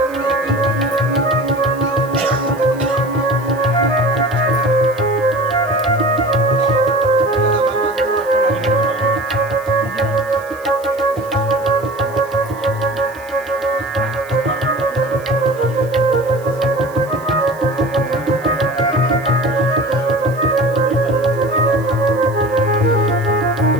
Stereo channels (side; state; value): right; noise; hiss, 24 dB below the sound